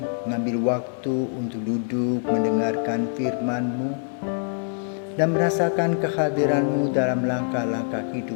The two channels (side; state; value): right; silent; digital silence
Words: mengambil waktu untuk duduk mendengarkan firman-Mu dan merasakan kehadiran-Mu dalam langkah-langkah